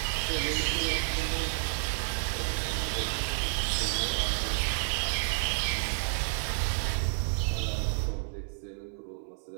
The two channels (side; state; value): left; silent; 58 dB below the other